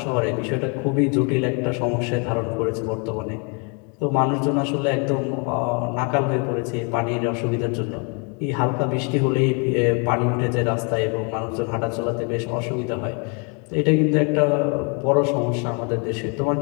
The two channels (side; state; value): right; quieter; 35.5 dB